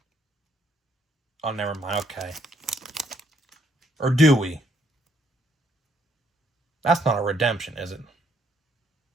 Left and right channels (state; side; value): normal; both; correlation 0.70